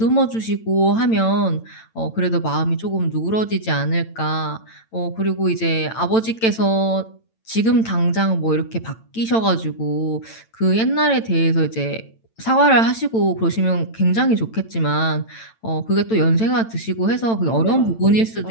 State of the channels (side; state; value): right; late; 8.9 ms